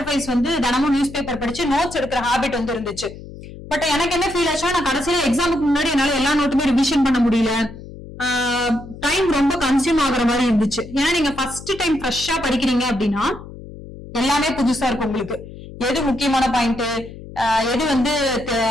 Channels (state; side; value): noise; left; hum, 15 dB below the sound